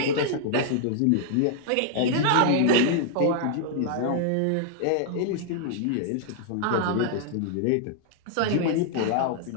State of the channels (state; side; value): different; both; correlation -0.01